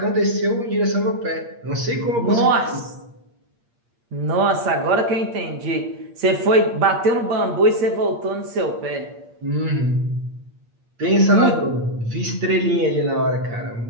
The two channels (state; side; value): late; left; 8.6 ms